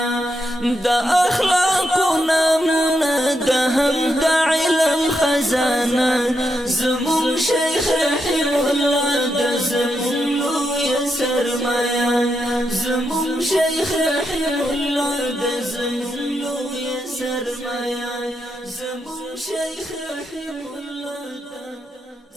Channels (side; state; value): both; normal; correlation 0.83